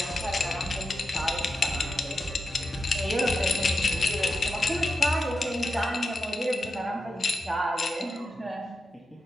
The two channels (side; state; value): both; normal; correlation 0.89